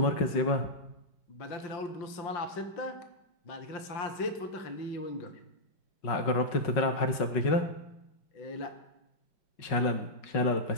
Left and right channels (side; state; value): right; late; 5.4 ms